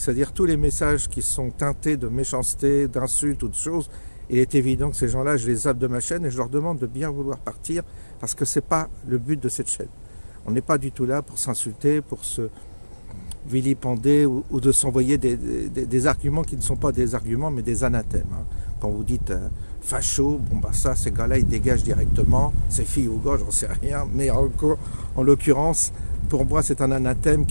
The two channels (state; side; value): inverted; both; correlation -1.00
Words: tous les messages qui sont teintés de méchanceté, d'insultes ou de choses, il est évident que ces gens-là, je les zappe de ma chaîne et je leur demande de bien vouloir partir, parce que ce n'est pas le but de cette chaîne. On n'est pas du tout là pour s'insulter, pour se vilipender ou de s'envoyer des arguments qui ne sont pas des arguments mais des anathèmes. quand vous dites facho, bon bah ça, ces gars-là, ils dégagent directement, ces filles ou gars, j'en sais rien, mais en l'occurrence, pour moi, c'est un anathème